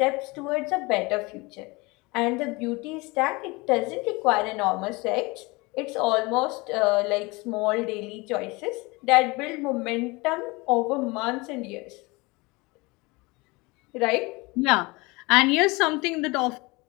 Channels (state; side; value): quieter; right; 24.8 dB